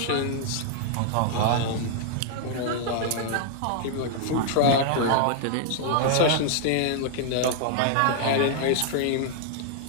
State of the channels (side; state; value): both; different; correlation -0.01